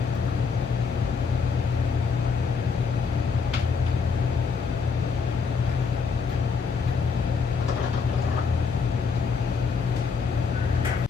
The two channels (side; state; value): right; quieter; 5.3 dB